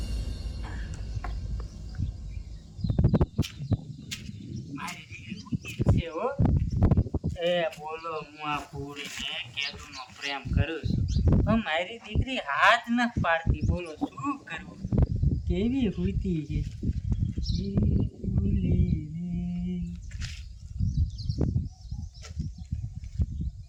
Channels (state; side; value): identical; both; correlation 1.00